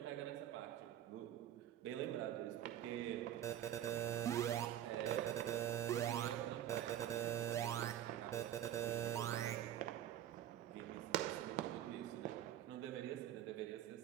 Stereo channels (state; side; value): quieter; left; 11.3 dB